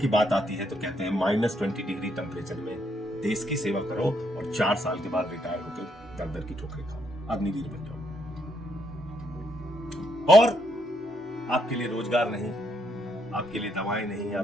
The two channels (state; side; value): normal; both; correlation 0.74